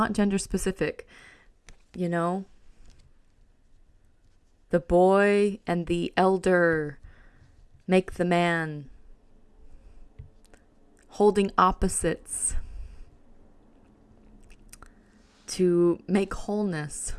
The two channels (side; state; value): both; identical; correlation 1.00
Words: gender specific, The boy and the elder make the man, holding opposites to make wholeness,